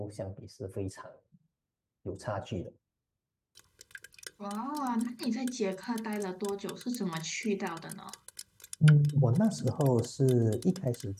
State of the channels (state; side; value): identical; both; correlation 1.00